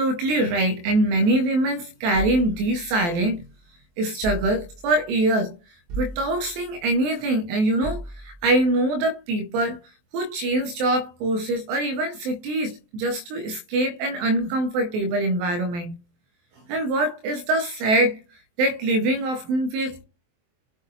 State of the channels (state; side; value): late; left; 23 ms